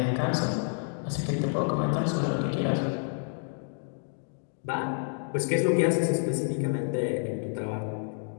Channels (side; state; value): right; silent; 58 dB below the other